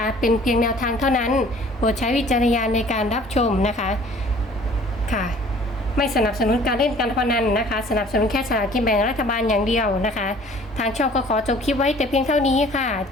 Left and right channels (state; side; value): normal; both; correlation 0.52